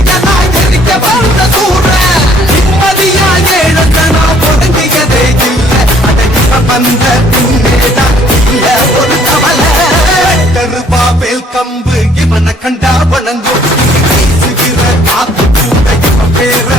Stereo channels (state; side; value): normal; both; correlation 0.61